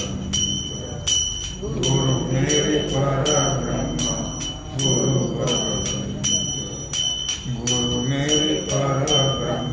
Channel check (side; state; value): both; identical; correlation 1.00